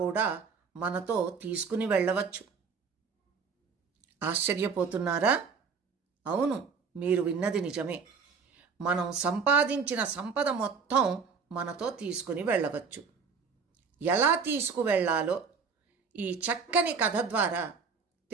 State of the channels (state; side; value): quieter; left; 5.5 dB